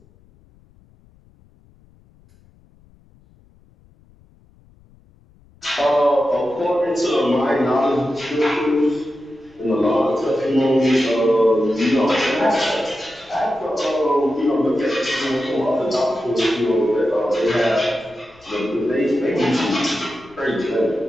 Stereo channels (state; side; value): noise; left; rumble, 29 dB below the sound